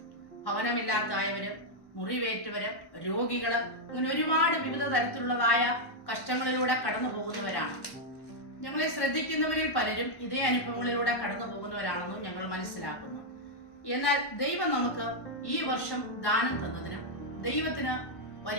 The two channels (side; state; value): right; late; 1.1 ms